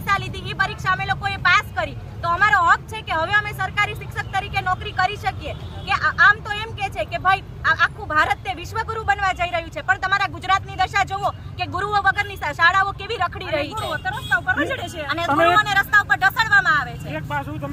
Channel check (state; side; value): identical; both; correlation 1.00